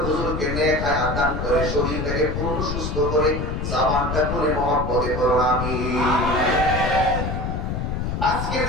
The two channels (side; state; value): left; noise; rumble, 3 dB below the sound